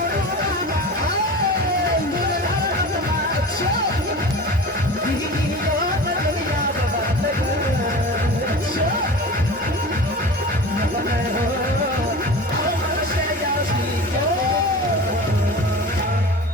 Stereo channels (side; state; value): both; normal; correlation 0.34